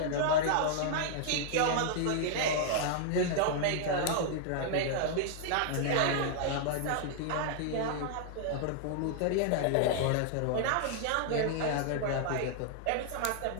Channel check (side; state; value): both; different; correlation -0.01